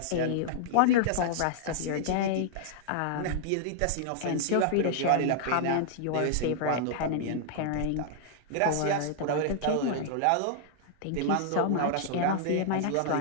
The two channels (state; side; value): different; both; correlation -0.01